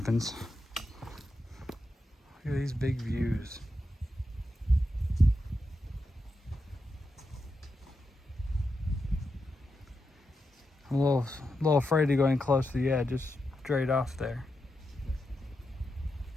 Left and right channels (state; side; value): normal; both; correlation 0.87